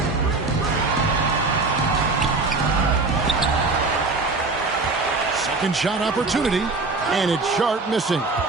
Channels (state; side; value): quieter; left; 3.6 dB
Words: Second shot opportunity, and it's Sharp missing.